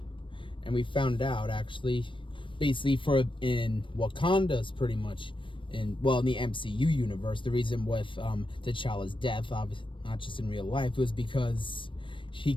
we found out actually, basically in Wakanda's pretty much in the MCU universe, the reason with T'Challa's death, obviously not just in real life, was because he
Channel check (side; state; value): right; late; 0.25 ms